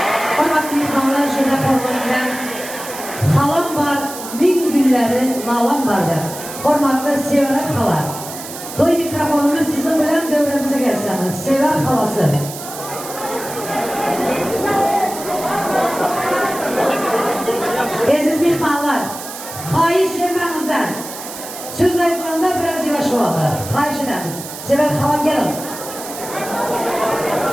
Hormatlı mehmanlar şurada hormatlayan halam var, bin günleri nalam vardır. Hormatlı Sever hala. Toy mikrofonumuz sizin bilen devremize gelseniz. Sever halası. Aziz mehmanlar, hayiş vermenizden söz ayıklarında biraz yavaş olalım. Hayiş edemiz. Sever hala gelin.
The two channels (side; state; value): right; noise; hiss, 11 dB below the sound